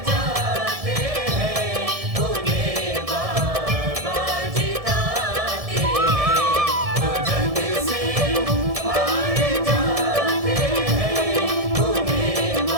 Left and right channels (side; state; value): left; late; 1.7 ms